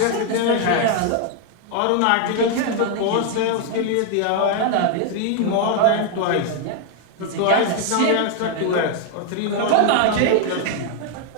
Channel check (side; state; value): both; different; correlation 0.01